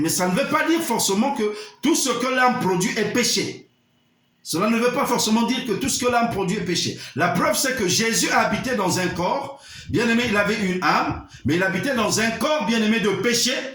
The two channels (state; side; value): identical; both; correlation 1.00